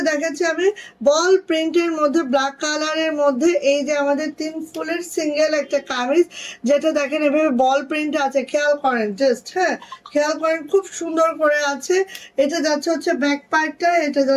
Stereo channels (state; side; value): identical; both; correlation 1.00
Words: দেখাচ্ছি আমি, বল প্রিন্টের মধ্যে ব্ল্যাক কালারের মধ্যে এই যে আমাদের 3 ফুলের সিঙ্গেল একটা কামিজ, যেটা দেখেন এভাবে বল প্রিন্ট আছে, খেয়াল করেন জাস্ট। হ্যাঁ, খেয়াল করেন, খুব সুন্দর করে আছে। এটা যাচ্ছে হচ্ছে ব্যাক পার্টটা, এটা